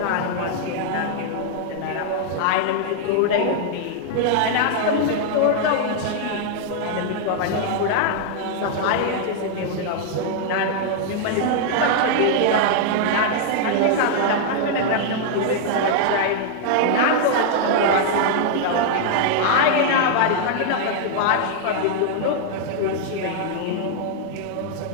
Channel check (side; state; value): both; different; correlation -0.01